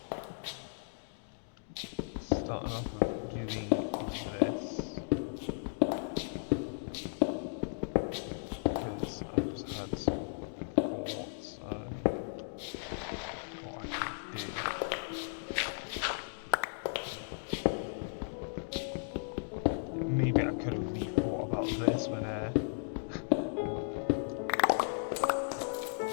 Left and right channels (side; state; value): right; silent; digital silence